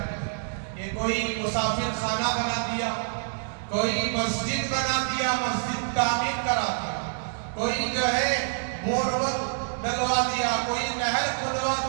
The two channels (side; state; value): left; silent; digital silence